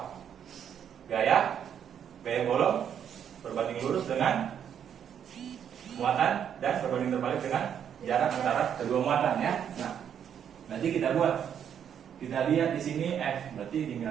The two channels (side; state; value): left; quieter; 8.7 dB